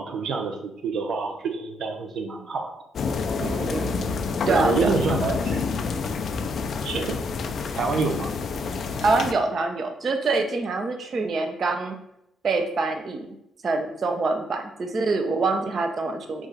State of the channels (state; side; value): normal; both; correlation 0.75